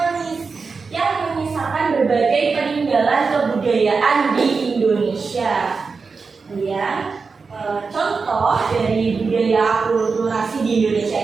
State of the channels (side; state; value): left; quieter; 4.7 dB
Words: menyisakan berbagai peninggalan kebudayaan di Indonesia. Ya, contoh dari budaya akulturasi di Indonesia